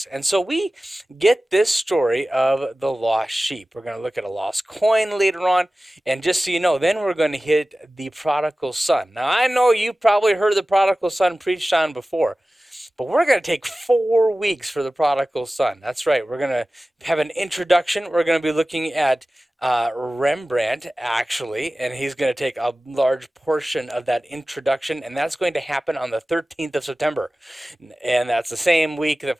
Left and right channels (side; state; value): both; normal; correlation 0.96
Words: And so we get this story of the lost sheep. We're going to look at a lost coin later on. And just so you know, then we're going to hit the prodigal son. Now, I know you probably heard the prodigal son preached on before, but we're going to take 4 weeks for the prodigal son. That's right. We're going to have an introduction. We're going to be looking at Rembrandt, actually, and he's going to take a large portion of that introduction, and that's going to happen on the 13th of September. And that's the same week,